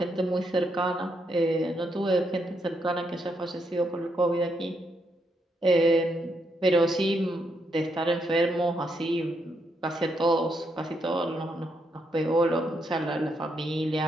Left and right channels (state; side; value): normal; both; correlation 0.78